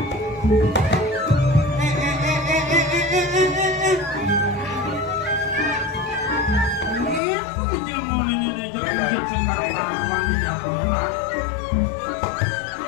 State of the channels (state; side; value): drops out; right; at 7.2 s